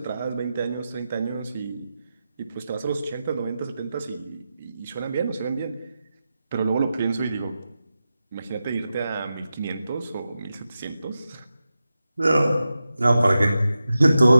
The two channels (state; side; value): inverted; both; correlation -0.91